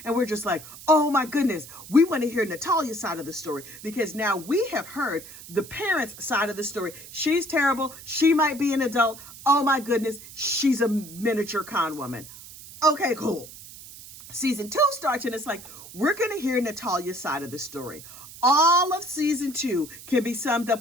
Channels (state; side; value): noise; right; hiss, 16 dB below the sound